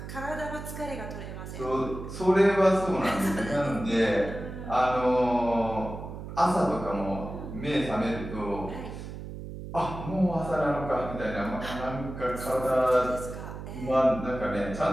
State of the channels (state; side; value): noise; right; hum, 10 dB below the sound